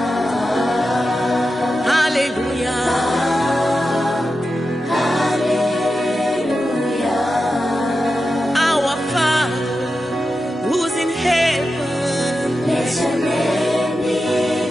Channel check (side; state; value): both; normal; correlation 0.91